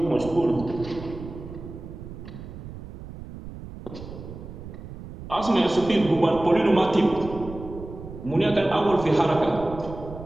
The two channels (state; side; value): noise; right; rumble, 12 dB below the sound